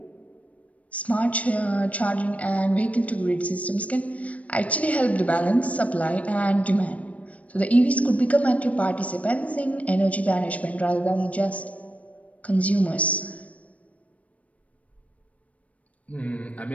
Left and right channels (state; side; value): late; right; 0.068 ms